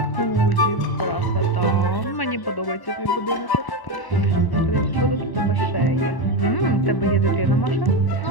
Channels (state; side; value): late; right; 1.1 ms